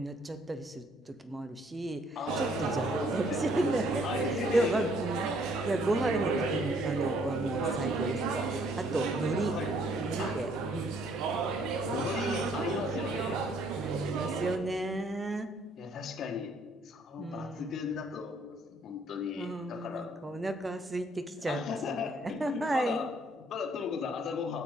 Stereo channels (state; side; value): normal; both; correlation 0.64